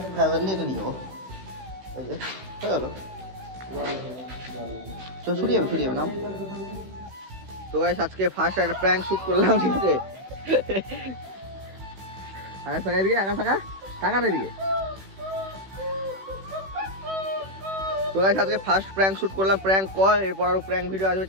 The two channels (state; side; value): late; left; 16 ms